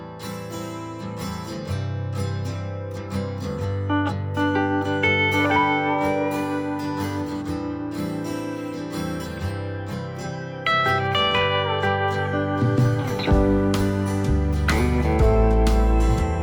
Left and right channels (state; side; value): identical; both; correlation 1.00